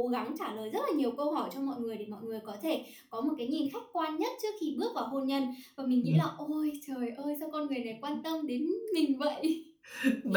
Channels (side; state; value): both; identical; correlation 1.00